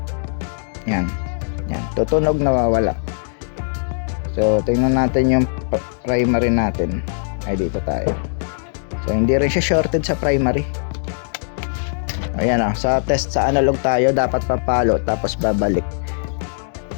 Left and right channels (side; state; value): right; silent; digital silence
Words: Yan, tutunog, nawawala. So tingnan natin yung primary natin. Ay, dito tayo. So hindi rin siya shorted sa primary. Ayan sa test sa analog tayo, dapat papalo tapos babalik.